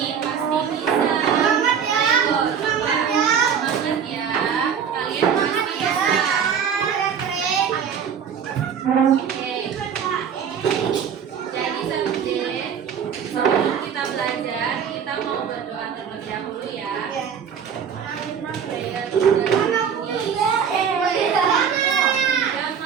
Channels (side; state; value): left; quieter; 7.5 dB